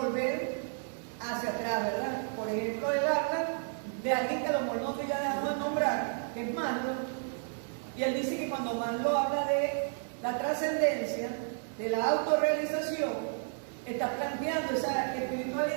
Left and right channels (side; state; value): left; silent; 56 dB below the other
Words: hacia atrás, ¿verdad? Por ejemplo, él habla de alguien que a lo mejor nosotros ya dejamos de nombrar, que es Maslow, y él dice que cuando Maslow habla de la trascendencia, de la autorrealización, está planteando esa